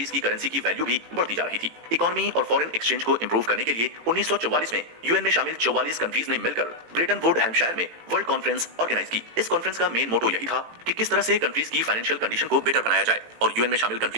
की करेंसी की वैल्यू भी बढ़ती जा रही थी। इकोनॉमी और फॉरेन एक्सचेंज को इंप्रूव करने के लिए 1944 में यूएन में शामिल 44 कंट्रीज ने मिलकर ब्रेटन वुड हैम्पशायर में वर्ल्ड कॉन्फ्रेंस ऑर्गेनाइज की। इस कॉन्फ्रेंस का मेन मोटो यही था कि किस तरह से कंट्रीज की फाइनेंशियल कंडीशन को बेटर बनाया जाए और यूएन में शामिल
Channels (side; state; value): left; late; 18 ms